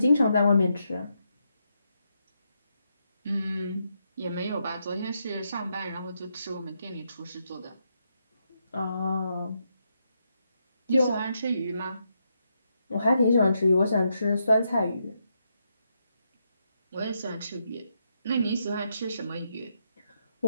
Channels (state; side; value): inverted; both; correlation -0.81